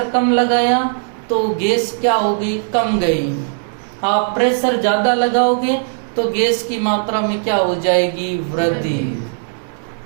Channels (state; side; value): silent; left; digital silence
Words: कम लगाया तो गैस क्या होगी, कम गई। आप प्रेशर ज्यादा लगाओगे तो गैस की मात्रा में क्या हो जाएगी, वृद्धि।